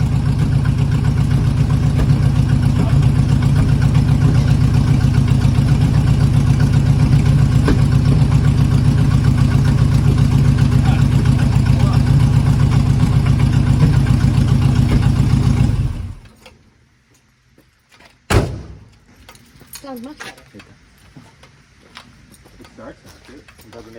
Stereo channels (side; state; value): both; identical; correlation 1.00